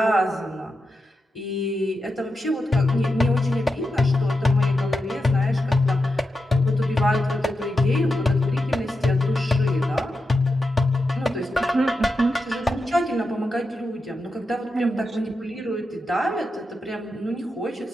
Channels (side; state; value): both; normal; correlation 0.88